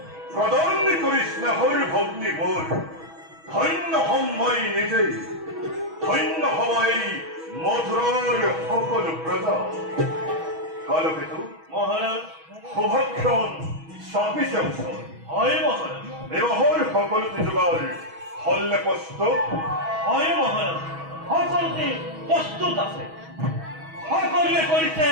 প্ৰদান কৰি স্নেহৰ ভগ্নী মোৰ, ধন্য হম মই নিজেই, ধন্য হবাই মধুৰৰ সকলো প্ৰজা। কালকেতু মহারাজ। শুভক্ষণ চাপিছে ওচৰ। হয় মহারাজ। বিবাহৰ সকলোতে যোগাৰ হলনে প্ৰস্তুত? হয় মহারাজ, সকলোতে প্ৰস্তুত আছে। সকলোৱে কৰিছে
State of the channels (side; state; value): left; late; 6.2 ms